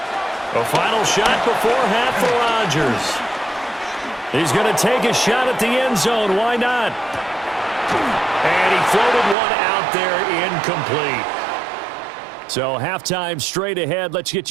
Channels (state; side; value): drops out; left; at 9.3 s